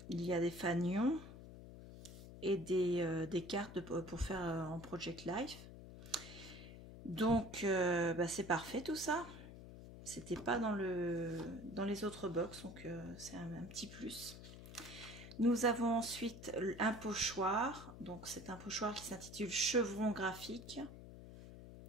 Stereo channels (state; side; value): noise; left; hum, 14 dB below the sound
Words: il y a des fanions et des cartes pour faire en Project Life. Donc, c'est parfait tout ça. C'était pas dans les autres box, donc c'est un petit plus. Nous avons ensuite un pochoir. Donc, c'est un pochoir qui s'intitule Chevron graphique.